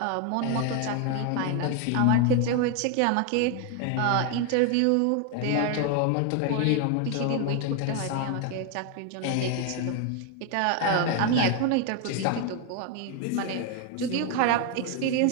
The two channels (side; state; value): both; different; correlation 0.01